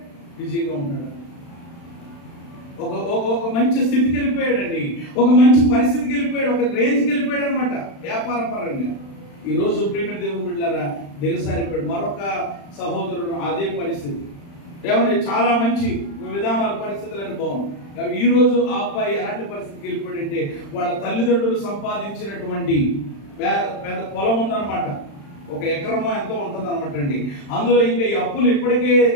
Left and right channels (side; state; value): right; late; 35 ms